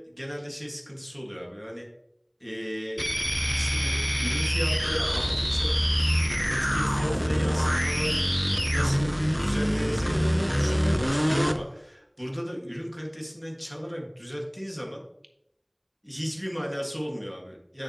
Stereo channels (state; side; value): identical; both; correlation 1.00